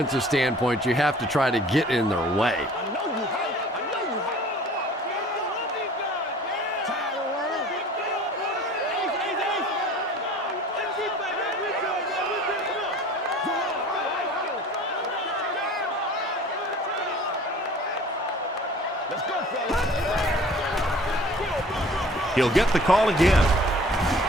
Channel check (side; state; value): both; normal; correlation 0.48